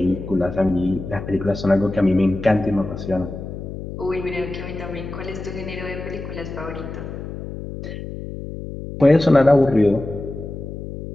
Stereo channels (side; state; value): left; noise; hum, 9 dB below the sound